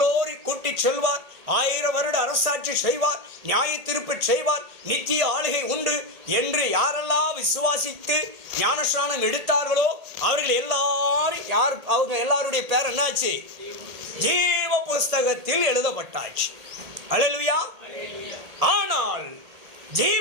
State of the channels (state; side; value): late; left; 1.8 ms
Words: கூட்டி செல்வார், 1000 வருட அரசாட்சி செய்வார், நியாய தீர்ப்பு செய்வார், நித்திய ஆளுகை உண்டு என்று யாரெல்லாம் விசுவாசித்து ஞானஸ்நானம் எடுத்தார்களோ அவர்கள் எல்லாரும் அவங்க எல்லாருடைய பேர் என்னாச்சு? ஜீவ புஸ்தகத்தில் எழுதப்பட்டாச்சு. அல்லேலூயா. ஆனால்